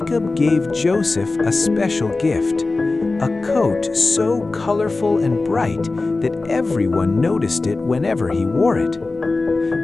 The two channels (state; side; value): quieter; right; 3.5 dB